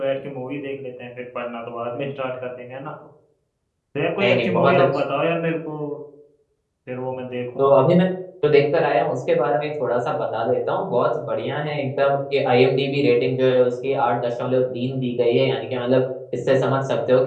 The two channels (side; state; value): both; identical; correlation 1.00